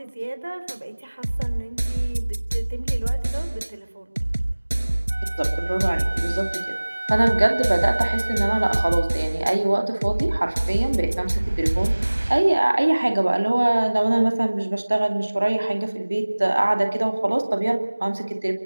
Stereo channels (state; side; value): inverted; both; correlation -1.00